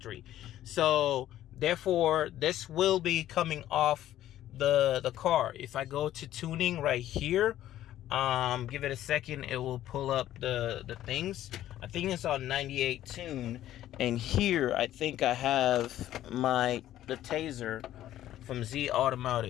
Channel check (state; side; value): quieter; right; 12.9 dB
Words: So therefore, this will be coming off the car. If I go to tuning right here, give it a second, it will pull up the things. I think it's on 98 tune, and here I think I have the Taser from Z